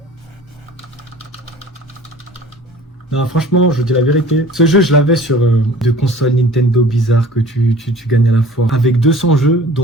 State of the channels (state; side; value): normal; both; correlation 0.47